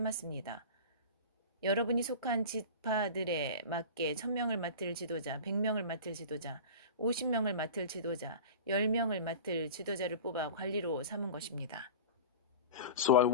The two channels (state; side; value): inverted; both; correlation -0.34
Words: 여러분이 속한 지파들에 맞게 1000명을 맡을 지도자, 100명을 맡을 지도자, 50명을 맡을 지도자, 10명을 맡을 지도자를 뽑아 관리로 삼은 것입니다. So I